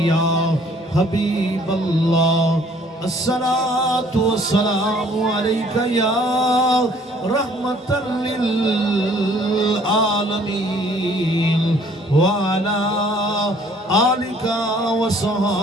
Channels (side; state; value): both; normal; correlation 0.58